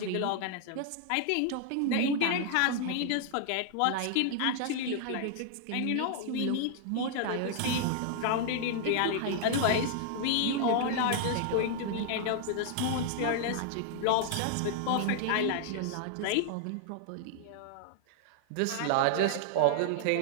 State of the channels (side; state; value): both; different; correlation 0.00